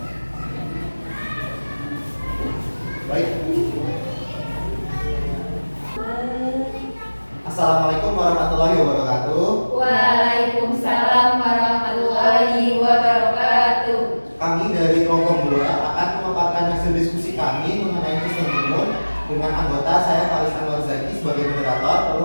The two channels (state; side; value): inverted; both; correlation -1.00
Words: Baik. Assalamualaikum warahmatullahi wabarakatuh. Waalaikumsalam warahmatullahi wabarakatuh. Kami dari kelompok 2 akan memaparkan hasil diskusi kami mengenai sistem imun dengan anggota saya Faris Anwar Zaki sebagai moderator, lalu